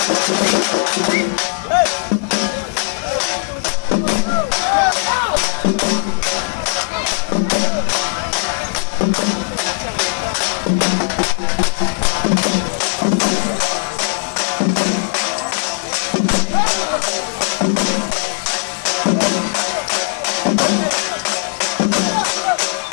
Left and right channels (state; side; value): silent; right; 68 dB below the other